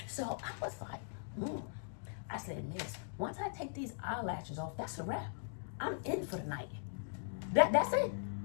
So I was like, I said, Miss, once I take these eyelashes off, that's a wrap. I'm in for the night. That's it.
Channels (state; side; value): silent; right; digital silence